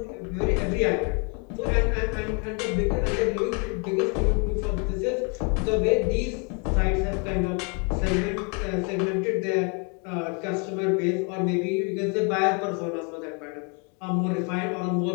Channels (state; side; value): quieter; right; 35.6 dB